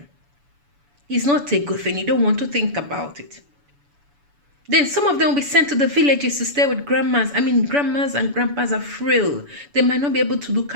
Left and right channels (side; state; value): left; late; 7.0 ms